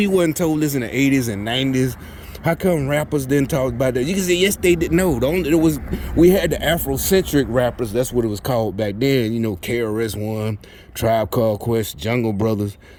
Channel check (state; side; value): identical; both; correlation 1.00